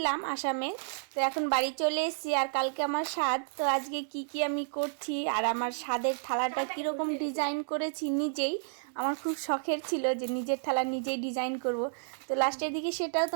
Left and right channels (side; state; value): left; silent; 57 dB below the other